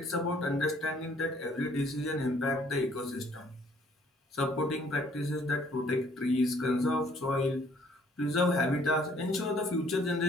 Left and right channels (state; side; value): normal; both; correlation 0.61